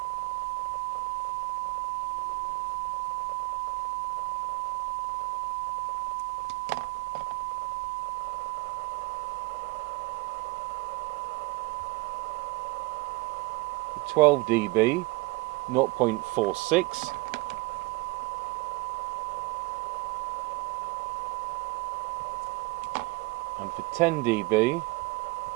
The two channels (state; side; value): quieter; left; 23.8 dB